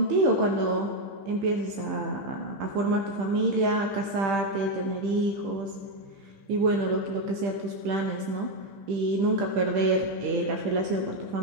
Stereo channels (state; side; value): late; left; 15 ms